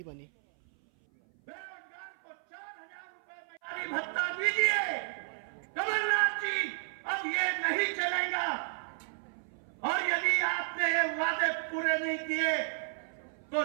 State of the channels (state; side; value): silent; left; 56 dB below the other